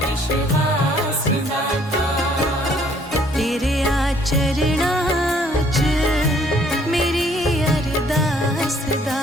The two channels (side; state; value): both; normal; correlation 0.62